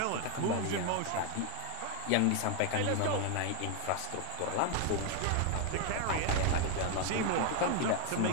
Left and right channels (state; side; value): different; both; correlation 0.01